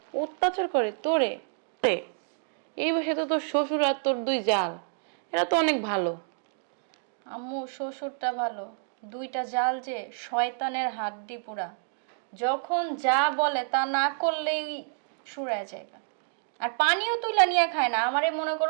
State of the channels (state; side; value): silent; left; digital silence